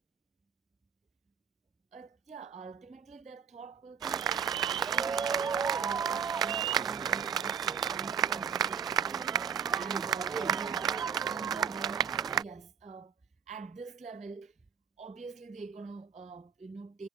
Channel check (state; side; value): quieter; left; 7.4 dB